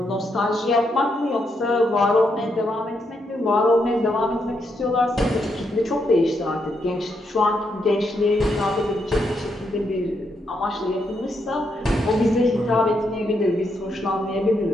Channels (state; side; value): normal; both; correlation 0.79